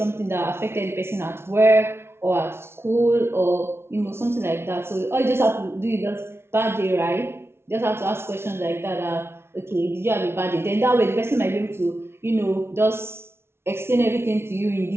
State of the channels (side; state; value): left; late; 0.12 ms